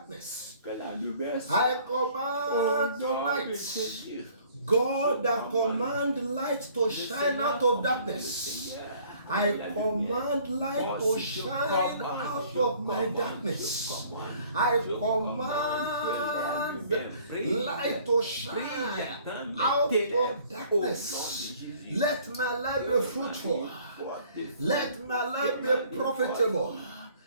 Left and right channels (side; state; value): both; inverted; correlation -0.56